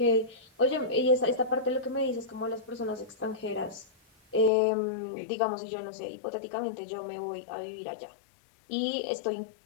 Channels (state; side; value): drops out; right; at 4.5 s